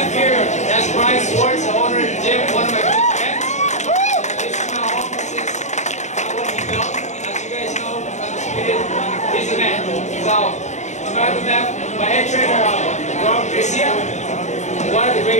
here, that's Brian Swartz, the owner of the gym, one of my good friends. This is my home. This is what he built. As you guys know, he's a man. So, on my left, my head trainer, Garcia, one of the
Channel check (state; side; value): late; right; 0.34 ms